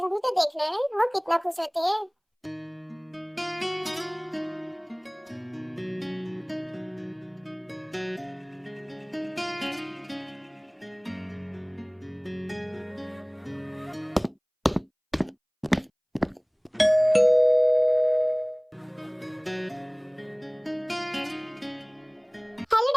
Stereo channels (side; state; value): both; identical; correlation 1.00